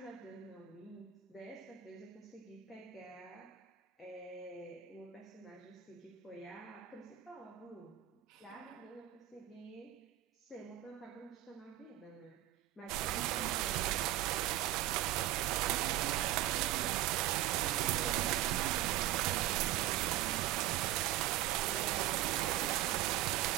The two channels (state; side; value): quieter; left; 13.8 dB